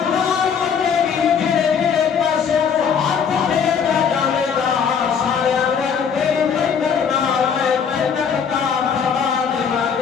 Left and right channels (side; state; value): right; quieter; 6.9 dB